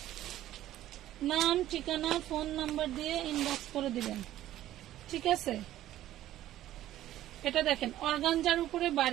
নাম ঠিকানা ফোন নাম্বার দিয়ে ইনবক্স করে দিবেন। ঠিক আছে, এটা দেখেন অর্গানজার উপরে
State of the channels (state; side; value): quieter; left; 13.5 dB